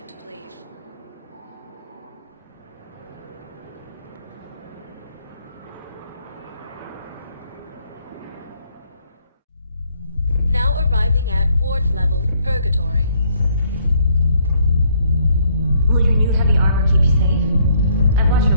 please. Now arriving at Ward's level, Purgatory. Will your new heavy armor keep you safe? I've watched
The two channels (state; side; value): inverted; both; correlation -0.67